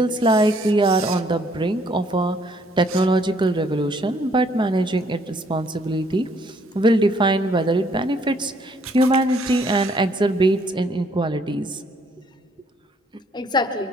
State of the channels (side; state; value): both; normal; correlation 0.65